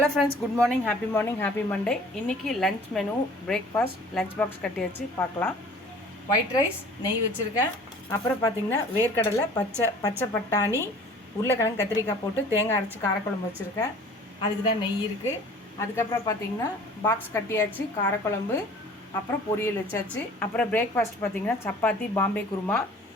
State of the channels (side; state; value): both; normal; correlation 0.49